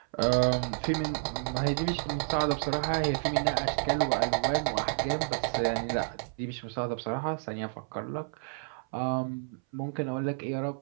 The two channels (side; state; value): left; silent; 57 dB below the other